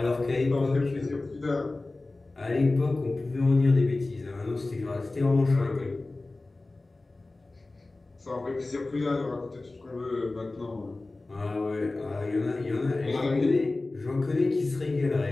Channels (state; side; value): quieter; right; 3.2 dB